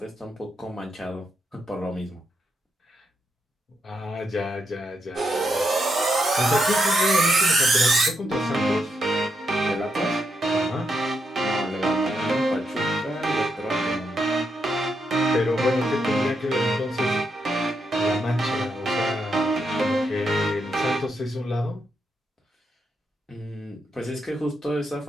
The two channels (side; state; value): both; normal; correlation 0.81